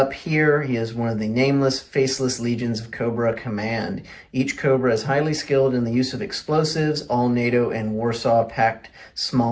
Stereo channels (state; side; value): identical; both; correlation 1.00